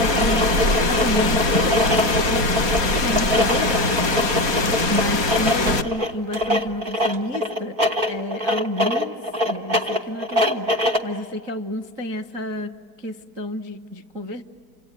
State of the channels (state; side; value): late; left; 4.2 ms